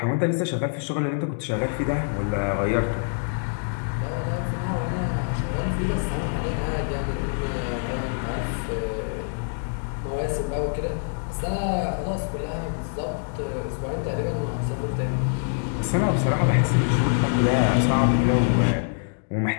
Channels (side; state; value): right; silent; digital silence